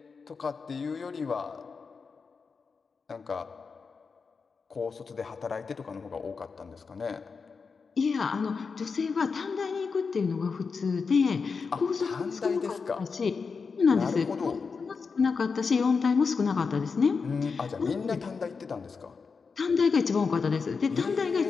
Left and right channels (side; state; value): right; quieter; 5.1 dB